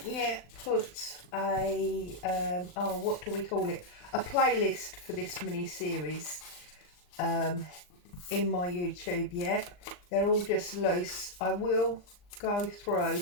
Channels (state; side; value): late; right; 39 ms